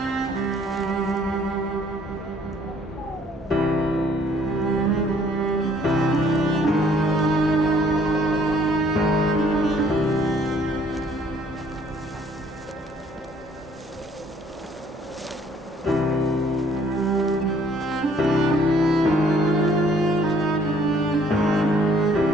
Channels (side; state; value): both; normal; correlation 0.61